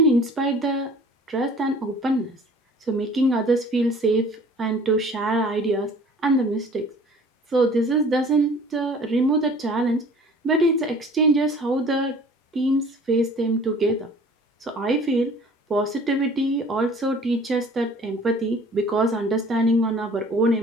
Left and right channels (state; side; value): normal; both; correlation 0.49